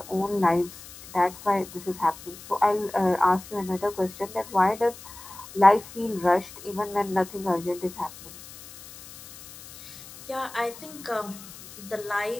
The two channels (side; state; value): left; noise; hiss, 17 dB below the sound